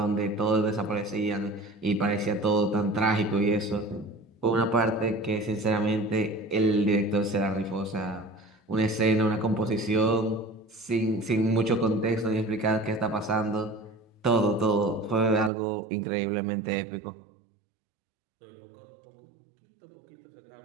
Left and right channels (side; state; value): left; drops out; at 15.5 s